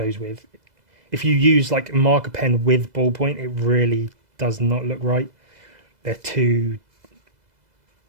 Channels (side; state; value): left; late; 2.0 ms